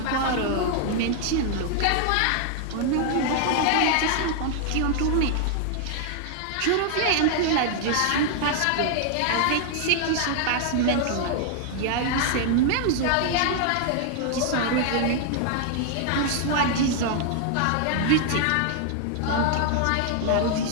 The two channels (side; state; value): both; different; correlation 0.00